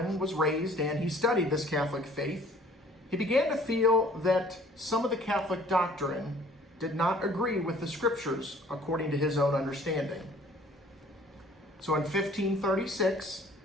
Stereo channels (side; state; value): both; normal; correlation 0.54